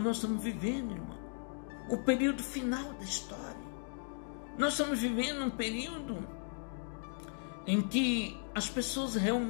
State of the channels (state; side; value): silent; right; 54 dB below the other